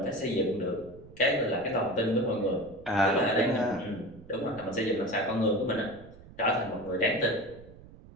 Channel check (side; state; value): right; noise; rumble, 20 dB below the sound